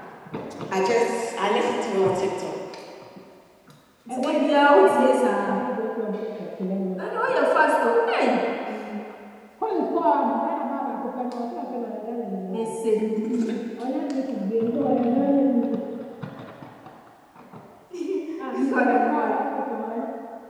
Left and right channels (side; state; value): both; identical; correlation 1.00